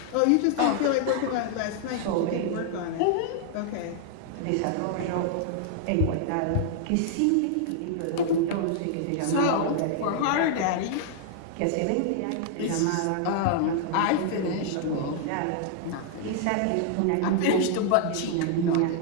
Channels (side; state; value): both; different; correlation 0.00